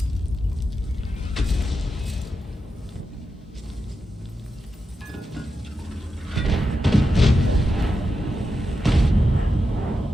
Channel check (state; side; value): normal; both; correlation 0.88